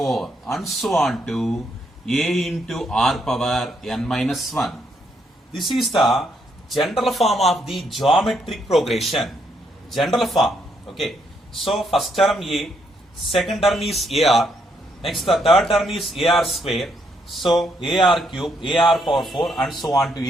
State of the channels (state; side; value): normal; both; correlation 0.75